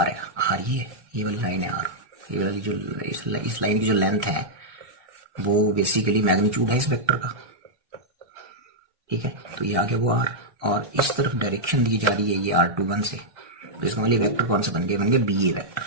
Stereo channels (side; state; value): left; late; 1.2 ms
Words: है। R ये वाली लाइन है R, ये वाली जो इस लाइन की जो लेंथ है वो बेसिकली मैग्नीट्यूड है इस वेक्टर का। ठीक है, तो ये आगे वो R, और इस तरफ डायरेक्शन दी जा रही है ये R21 से, तो इसका मतलब वेक्टर कौन सा बन गया, BA वेक्टर।